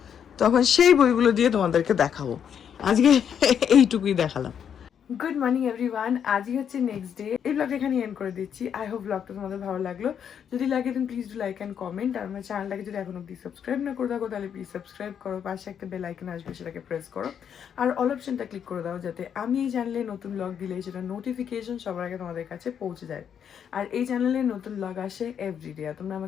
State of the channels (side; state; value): right; quieter; 8.2 dB